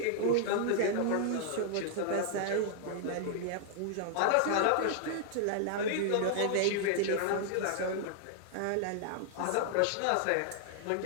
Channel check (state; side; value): different; both; correlation -0.01